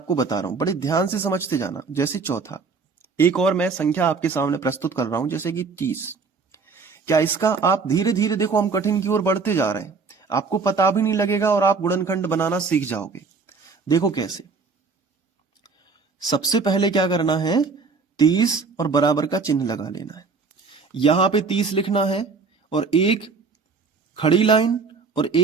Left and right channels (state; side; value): quieter; left; 4.7 dB